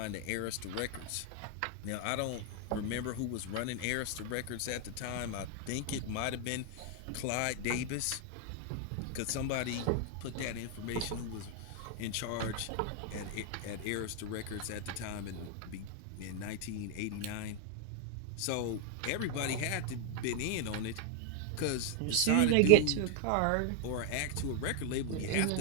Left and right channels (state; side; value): different; both; correlation 0.00